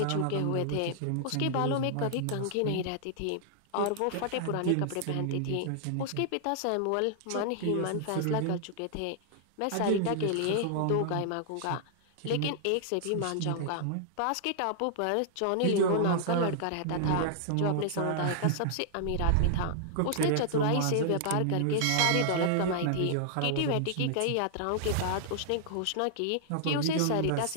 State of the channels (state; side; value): different; both; correlation -0.01